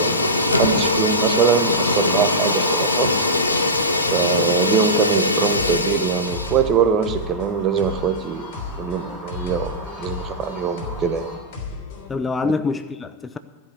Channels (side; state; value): both; normal; correlation -0.12